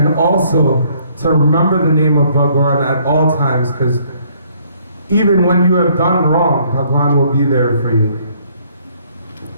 also to remember the name of Bhagwan at all times, because even when you have done wrong, Bhagwan will be there for you.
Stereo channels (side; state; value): both; inverted; correlation -0.64